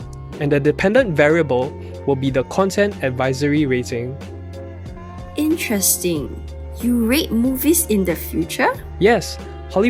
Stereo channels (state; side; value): identical; both; correlation 1.00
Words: And the dependent variable will be the content advisory rating. Interesting. You rate movies in the future? Yes,